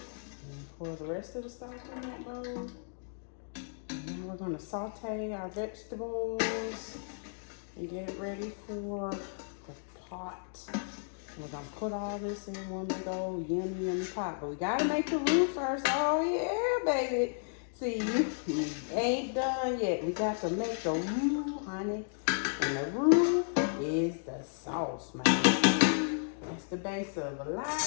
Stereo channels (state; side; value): silent; right; digital silence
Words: Pour the rest of the stock in that bowl. And now we're gonna saute our vegetables and get it ready for the pot. We're gonna put all this in one big old yummy pot. But we gotta make the roux first. Oh yeah, baby. See, we ain't done yet. We got to make the roux, honey. And the roux is the sauce, man. That's the base of a lot